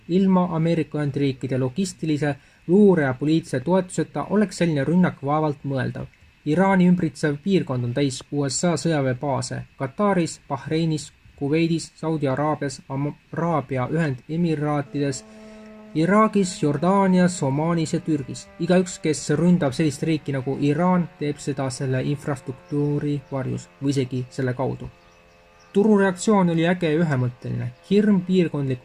Ilma Ameerika Ühendriikide logistilise, luure ja poliitilise toetuseta oleks selline rünnak vaevalt mõeldav. Iraani ümbritsev piirkond on täis USA sõjaväebaase Kataris, Bahreinis, Kuveidis, Saudi Araabias, Araabia Ühendemiraatides, Iraagis, Jordaanias, Omaanis ja Türgis. Igaüks, kes ründab sellist riiki nagu Iraan, teeb seda selle infrastruktuuri varjus või isegi selle kaudu. Turureaktsioon oli äge ja ühemõtteline. Hirm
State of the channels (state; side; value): identical; both; correlation 1.00